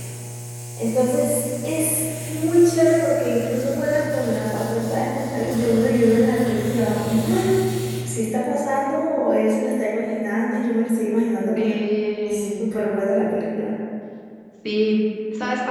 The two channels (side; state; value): both; identical; correlation 1.00